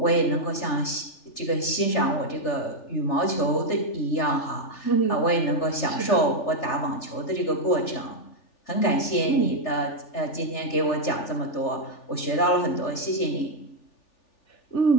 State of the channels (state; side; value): late; right; 3.3 ms